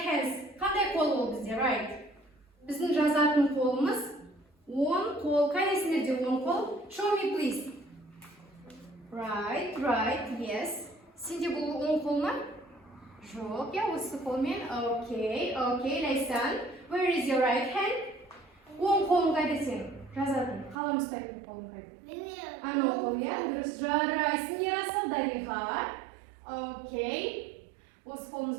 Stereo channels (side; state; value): left; drops out; at 20.8 s